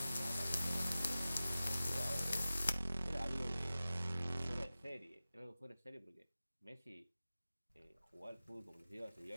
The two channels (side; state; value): both; inverted; correlation -0.95